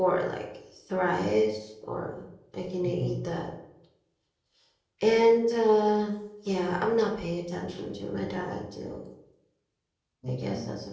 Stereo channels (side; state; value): both; identical; correlation 1.00